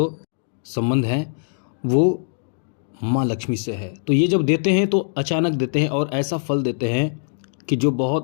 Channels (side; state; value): right; silent; digital silence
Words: संबंध है वो माँ लक्ष्मी से है। तो ये जब देते हैं तो अचानक देते हैं और ऐसा फल देते हैं कि जो